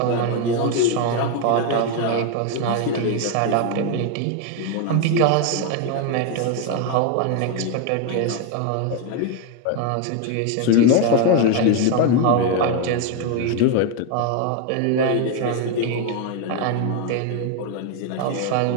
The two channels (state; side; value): different; both; correlation 0.01